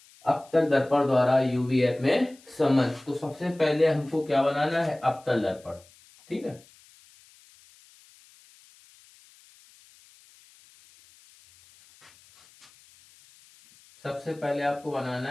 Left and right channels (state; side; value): noise; left; hiss, 27 dB below the sound